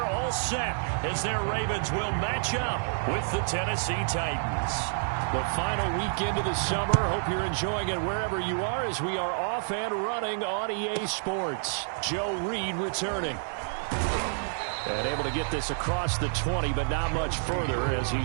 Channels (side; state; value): left; silent; digital silence